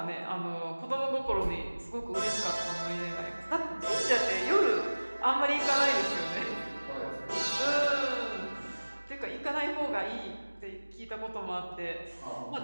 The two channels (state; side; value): inverted; both; correlation -1.00